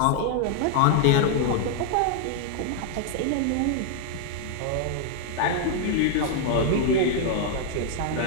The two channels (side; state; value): both; different; correlation 0.00